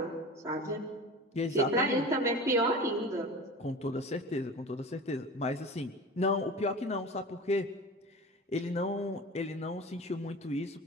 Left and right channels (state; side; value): normal; both; correlation 0.34